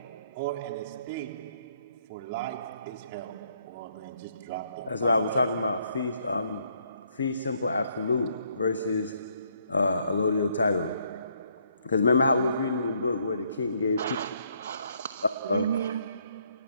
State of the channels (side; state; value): both; inverted; correlation -0.70